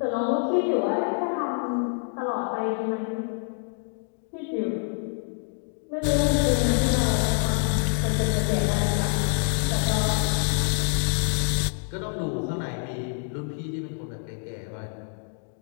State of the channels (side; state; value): right; silent; 59 dB below the other